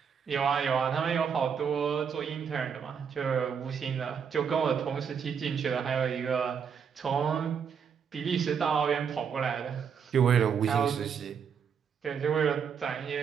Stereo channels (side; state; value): left; quieter; 7.0 dB